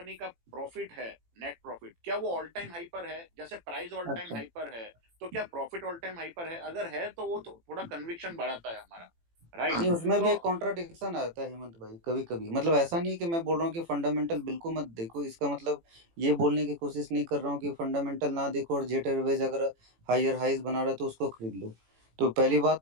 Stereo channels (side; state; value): left; late; 18 ms